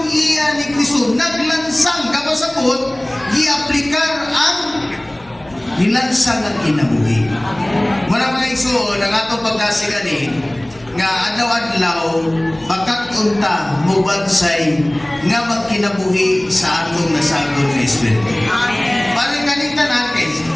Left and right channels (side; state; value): left; noise; hum, 26 dB below the sound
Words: iya ni Kristo naglansang kapasabot, gi-aplikar ang nilansang ang kinabuhi. Wala mga igsoon, ang atong pagdasigan nga adlaw-adlaw bakat unta mubansay nga magkinabuhi sa atong nasagol nga espiritu. Amen. Balik kanita natin,